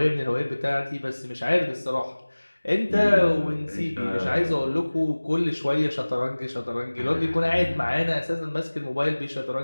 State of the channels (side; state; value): both; inverted; correlation -1.00